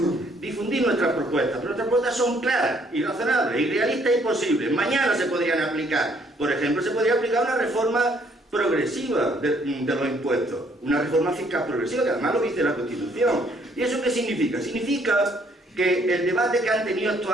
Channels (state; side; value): normal; both; correlation 0.65